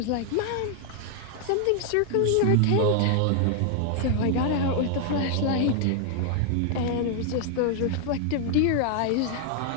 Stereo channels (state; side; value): different; both; correlation 0.00